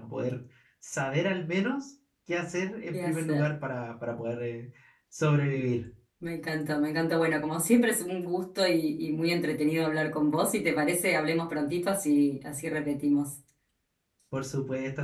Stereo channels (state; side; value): identical; both; correlation 1.00